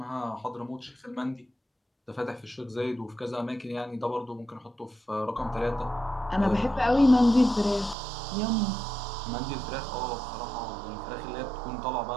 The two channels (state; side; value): drops out; left; at 8.0 s